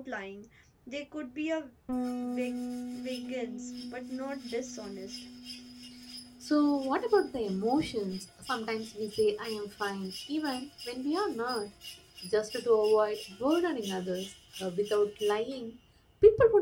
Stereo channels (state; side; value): identical; both; correlation 1.00